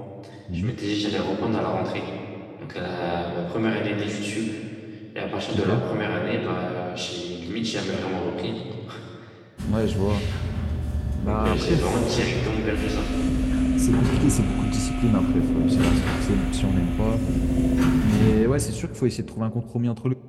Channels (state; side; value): identical; both; correlation 1.00